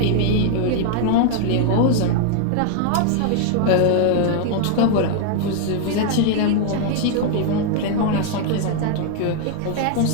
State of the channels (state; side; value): different; both; correlation 0.00